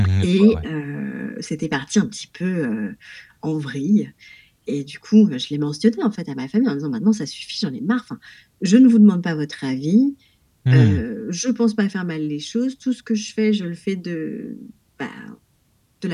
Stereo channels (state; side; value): identical; both; correlation 1.00